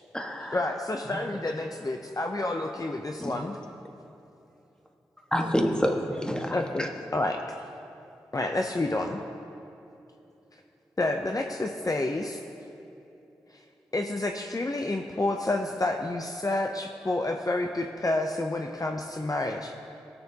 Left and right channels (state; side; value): normal; both; correlation 0.82